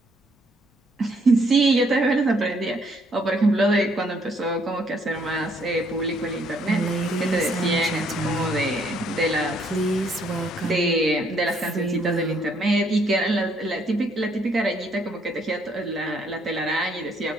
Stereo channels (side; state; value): both; normal; correlation 0.68